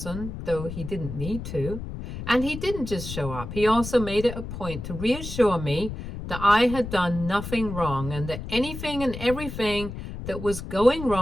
though he didn't need to. And he didn't just show up. He also made it a point to reassure me that I had done nothing wrong and that anything and everything that was going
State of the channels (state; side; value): noise; left; rumble, 8 dB below the sound